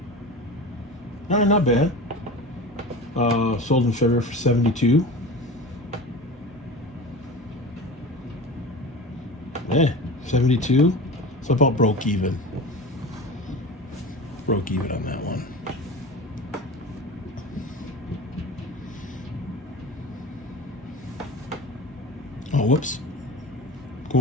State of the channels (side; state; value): both; normal; correlation 0.32